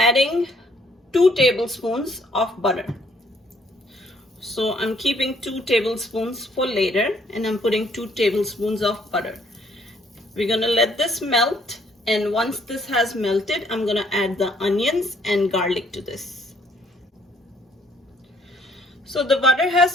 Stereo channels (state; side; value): normal; both; correlation 0.65